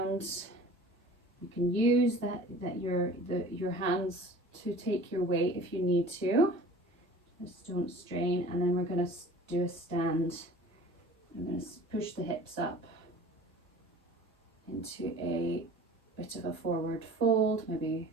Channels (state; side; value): normal; both; correlation 0.44